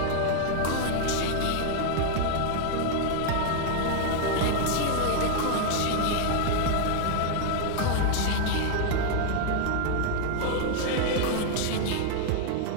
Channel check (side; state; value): both; different; correlation 0.00